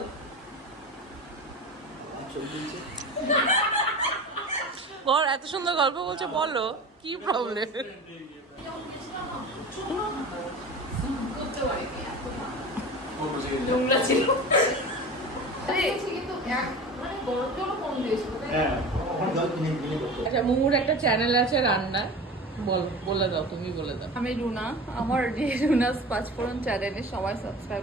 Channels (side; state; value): both; normal; correlation 0.33